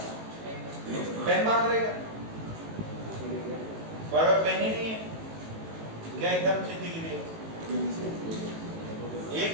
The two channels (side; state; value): left; late; 18 ms